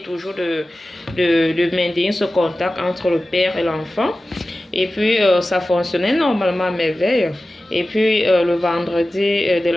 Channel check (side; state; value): both; normal; correlation 0.95